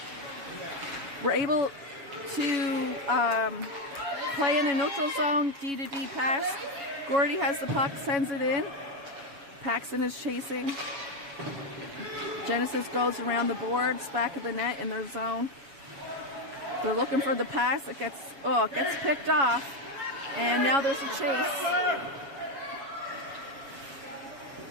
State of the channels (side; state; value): left; late; 7.2 ms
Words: We're able to play in a neutral zone, D to D pass. Gordy has the puck, sends it in. Paxton is chasing. Genesis goes around the boards, back of the net in their zone. They're looking for the pass. It gets picked off. And now there's a chase.